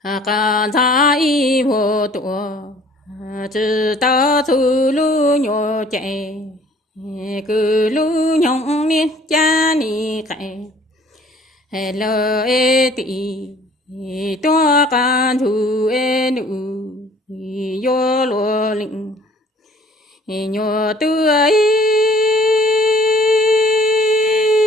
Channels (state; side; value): normal; both; correlation 0.54